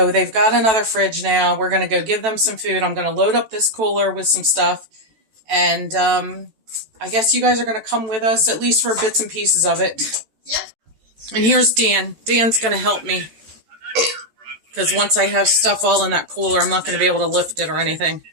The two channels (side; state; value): left; late; 13 ms